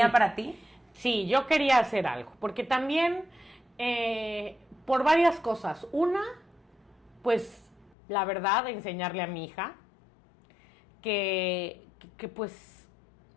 Sí. para ti. Sí, yo quería hacer algo, porque también por varias cosas. Una, pues la verdad, enseñarle a mi hija que pues,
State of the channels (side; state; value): right; drops out; at 7.9 s